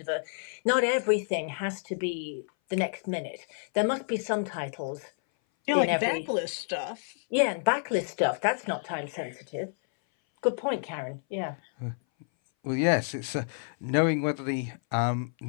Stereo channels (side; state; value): right; silent; 58 dB below the other